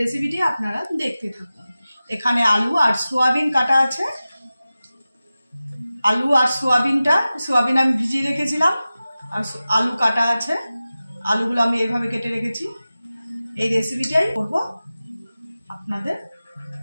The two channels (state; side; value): inverted; both; correlation -0.96